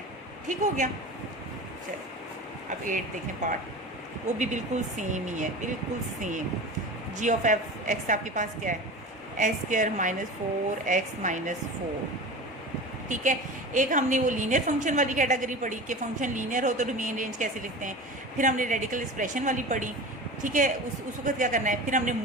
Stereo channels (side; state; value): both; normal; correlation 0.32